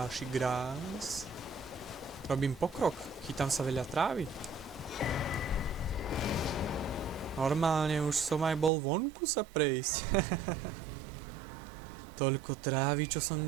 grás. Robím pokrok. Chytám sa veľa trávy. Normálne už som aj bol vonku sa prejsť. Toľko trávy, čo som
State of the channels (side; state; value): left; drops out; at 8.7 s